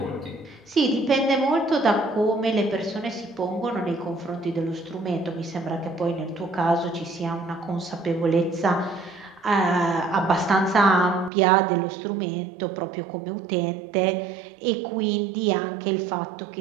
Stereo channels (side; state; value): left; drops out; at 11.3 s